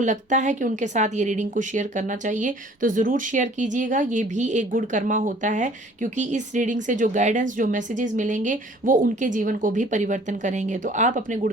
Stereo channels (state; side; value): normal; both; correlation 0.53